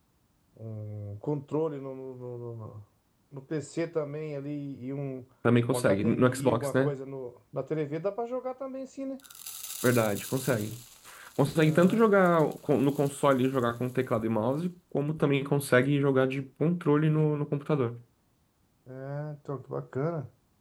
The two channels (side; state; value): both; identical; correlation 1.00